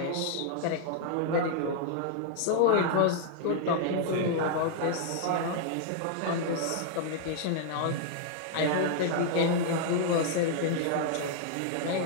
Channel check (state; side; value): different; both; correlation 0.00